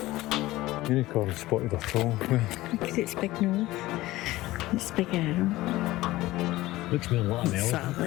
Unicorn spotted a troll. Look at its big nose. Its big arm. Looks more like an Sort elephant. of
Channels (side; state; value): right; quieter; 17.7 dB